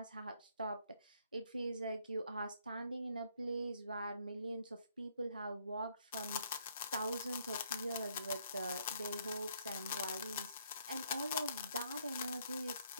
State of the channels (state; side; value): inverted; both; correlation -0.69